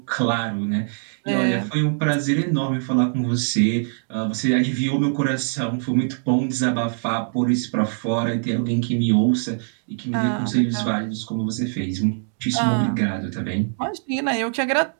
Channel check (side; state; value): left; silent; digital silence